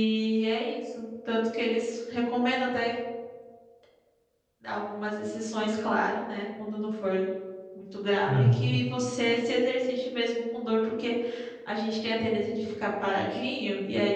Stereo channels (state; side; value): identical; both; correlation 1.00